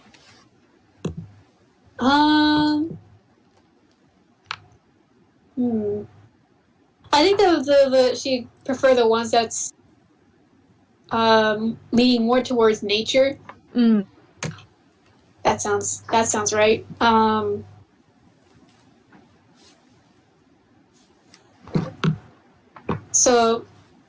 I think the she prefer the ones that's leaning more towards nature. That sounds right. So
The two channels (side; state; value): both; identical; correlation 1.00